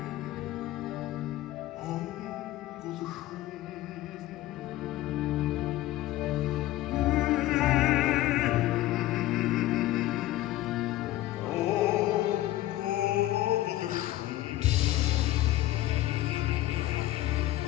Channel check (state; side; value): quieter; right; 15.4 dB